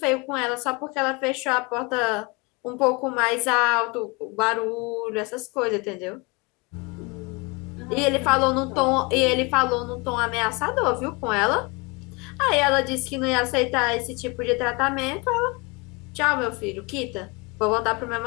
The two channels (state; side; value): quieter; right; 28.1 dB